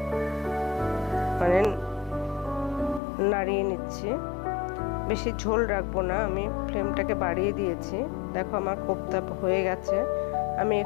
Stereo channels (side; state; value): right; drops out; at 3.0 s